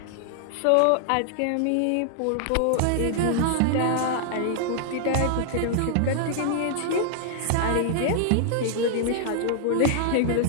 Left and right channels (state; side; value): different; both; correlation -0.01